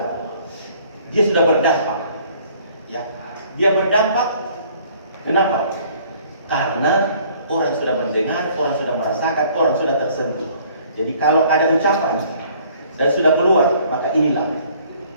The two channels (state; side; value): inverted; both; correlation -0.57